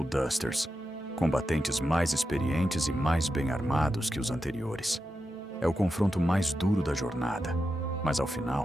Dusters, combatentes mais experientes e mais bem armados que os anteriores. É o confronto mais duro da jornada, mas ao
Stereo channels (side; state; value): both; normal; correlation 0.89